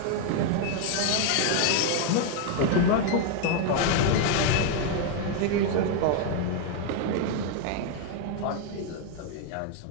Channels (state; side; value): different; both; correlation 0.01